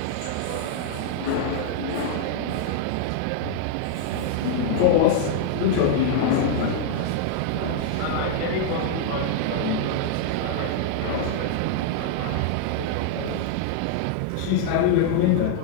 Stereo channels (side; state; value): both; different; correlation -0.01